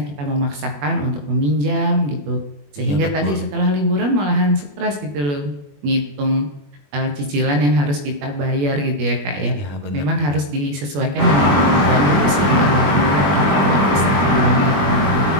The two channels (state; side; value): late; left; 21 ms